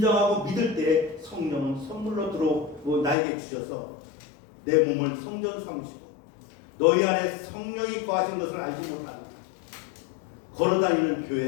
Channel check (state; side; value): drops out; right; at 3.2 s